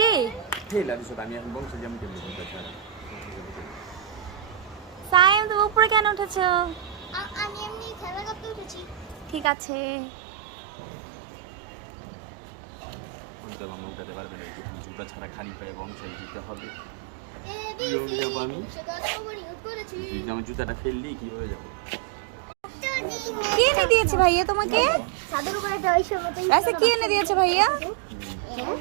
সাইম, তুমি উপরে কেন উঠেছো? আমি এমনি খেলা করতে উঠেছি। ঠিক আছে। ছাড়া খালি পায়ে বংশাল যেতে হবে। আমি জুতাটা ফেললি কিভাবে যাবো? কে এনে দিয়েছে ভাইয়া তোমাকে? সাদুর উপরে একটা ঐশ্বর মতো আচ্ছা, কি এনে দিয়েছে ভাইয়া?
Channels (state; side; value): drops out; left; at 9.5 s